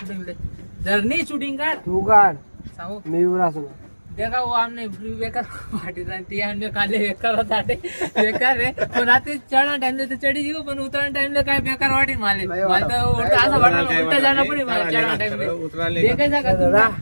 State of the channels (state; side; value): inverted; both; correlation -1.00